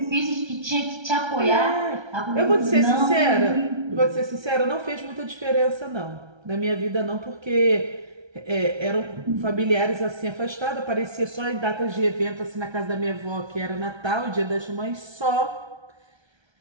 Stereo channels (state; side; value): late; left; 1.3 ms